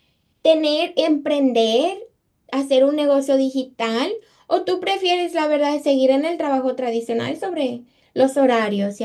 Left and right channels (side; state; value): both; identical; correlation 1.00